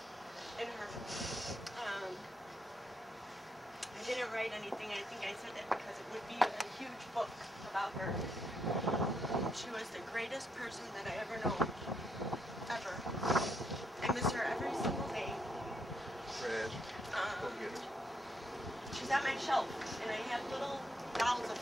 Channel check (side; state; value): both; normal; correlation 0.76